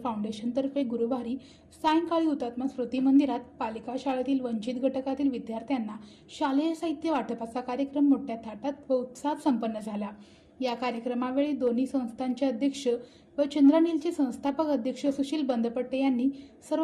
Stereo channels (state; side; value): identical; both; correlation 1.00